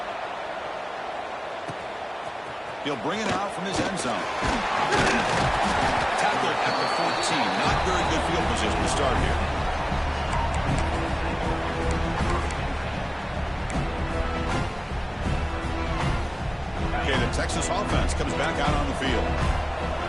He'll bring it out from his end zone. Tackle at the 14. Not very good field position to start here. Okay, the Texas offense comes back out on the field.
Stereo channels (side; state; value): both; identical; correlation 1.00